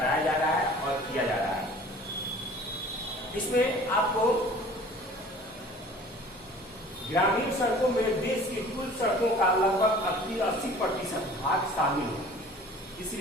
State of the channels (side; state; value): both; normal; correlation 0.47